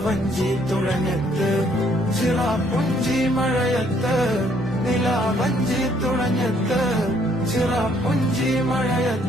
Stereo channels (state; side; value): normal; both; correlation 0.66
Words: തുഴഞ്ഞത്ത് ചിറാപ്പുഞ്ചി മഴയത്ത് നിലാവഞ്ചി തുഴഞ്ഞത്ത് ചിറാപ്പുഞ്ചി